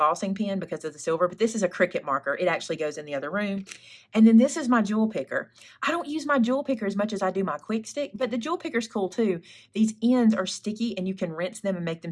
pen because of the silver, but this is a Cricut marker. It actually goes in the other room. And then this is my jewel picker. I don't use my jewel picker as much as I do my quick stick, but the jewel picker's cool too. These ends are sticky and you can rinse them and make them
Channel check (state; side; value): identical; both; correlation 1.00